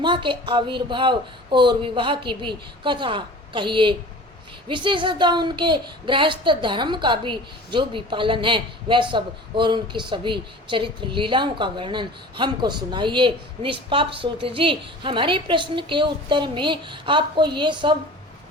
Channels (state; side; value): normal; both; correlation 0.40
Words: के आविर्भाव और विवाह की भी कथा कहिए, विशेषतः उनके गृहस्थ धर्म का भी जो भी पालन है वह सब, और उनकी सभी चरित्र लीलाओं का वर्णन हमको सुनाइए। निष्पाप सूत जी, हमारे प्रश्न के उत्तर में आपको ये सब